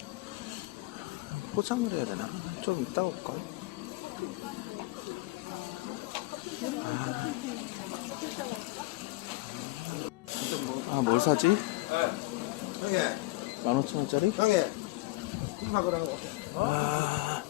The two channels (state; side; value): quieter; right; 20.3 dB